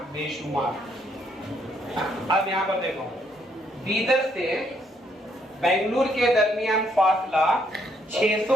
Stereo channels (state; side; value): normal; both; correlation 0.71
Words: बेशुमार। अब यहाँ पर देखो, बीदर से बेंगलुरु के दरमियान फासला